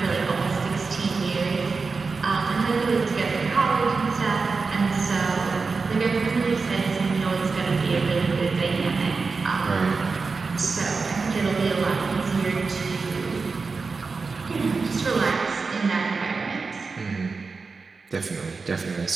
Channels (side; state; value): left; quieter; 4.5 dB